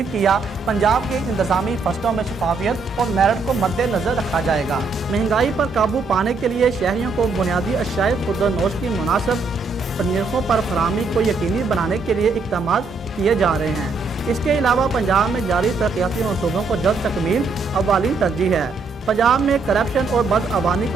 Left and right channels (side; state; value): left; quieter; 4.1 dB